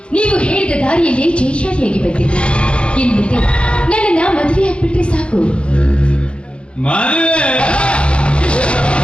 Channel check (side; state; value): right; late; 0.058 ms